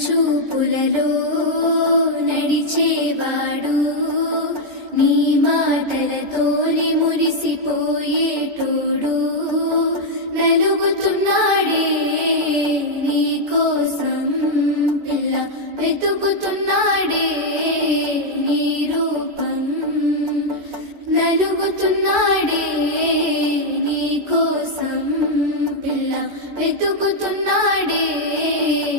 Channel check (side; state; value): left; late; 14 ms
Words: చూపులలో నడిచేవాడు, నీ మాటలతోనే మురిసిపోయేటోడు, నలుగుతున్నాడే నీ కోసం పిల్ల, వెతుకుతున్నాడే నీ రూపం, నలుగుతున్నాడే నీ కోసం పిల్ల, వెతుకుతున్నాడే